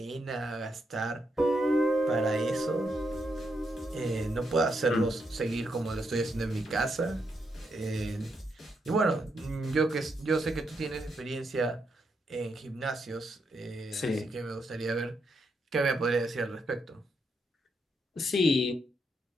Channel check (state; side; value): normal; both; correlation 0.80